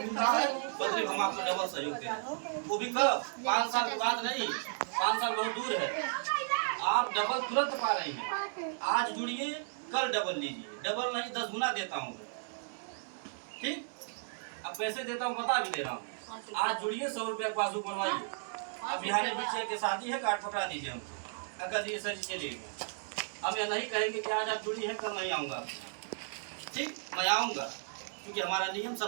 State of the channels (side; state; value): left; silent; digital silence